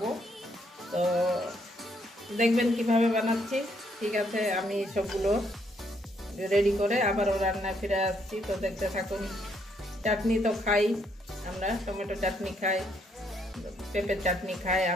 তো দেখবেন কিভাবে বানাচ্ছি। ঠিক আছে, আমি সবগুলো রেডি করে আবারও রান্নায় ফিরে আসছি। তো দেখতে থাকুন। চাটনি তো খাই আমরা, টমেটো চাটনি খাই, পেঁপের চাটনি খাই,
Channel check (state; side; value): normal; both; correlation 0.72